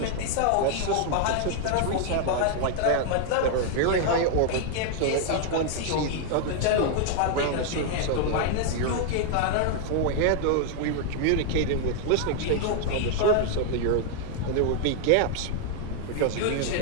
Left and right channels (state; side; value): different; both; correlation 0.00